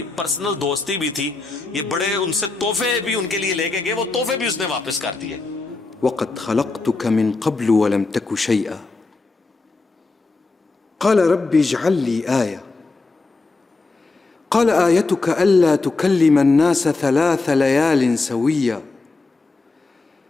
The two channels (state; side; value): quieter; right; 3.6 dB